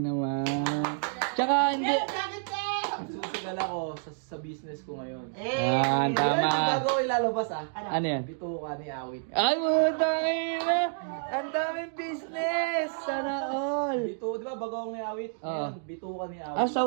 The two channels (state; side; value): silent; left; digital silence